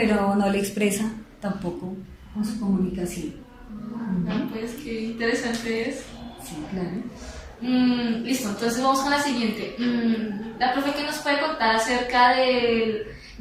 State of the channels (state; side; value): identical; both; correlation 1.00